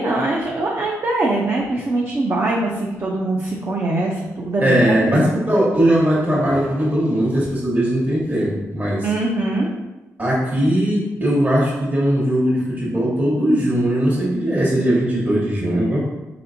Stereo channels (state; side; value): normal; both; correlation 0.85